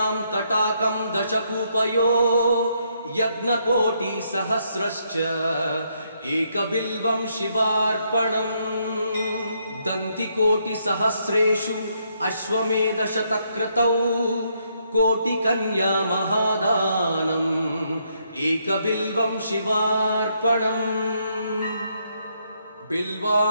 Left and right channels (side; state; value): both; inverted; correlation -0.74